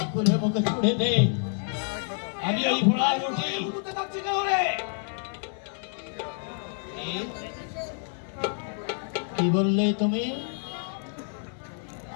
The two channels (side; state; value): right; silent; 59 dB below the other